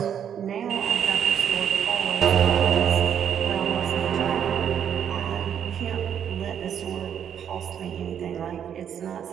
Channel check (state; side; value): quieter; left; 8.8 dB